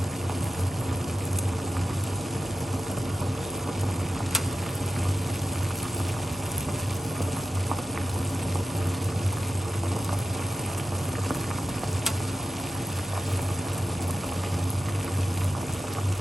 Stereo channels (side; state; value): both; normal; correlation 0.91